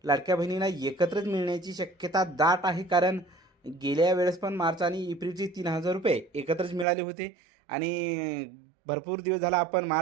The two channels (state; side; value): drops out; left; at 6.9 s